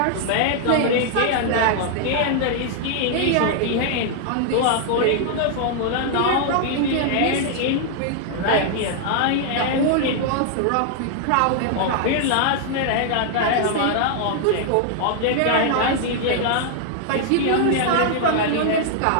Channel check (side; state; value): both; different; correlation -0.01